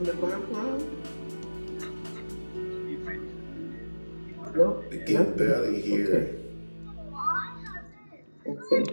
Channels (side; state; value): both; inverted; correlation -1.00